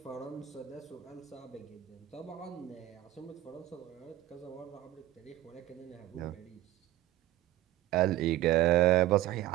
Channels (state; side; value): quieter; left; 14.4 dB